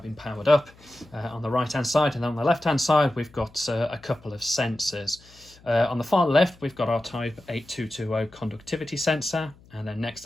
powered up on the right hand side, and then on the left hand side we've got a couple of sensors. On the far left we've got our Type 8220 conductivity sensor, and then next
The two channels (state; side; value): noise; left; hum, 26 dB below the sound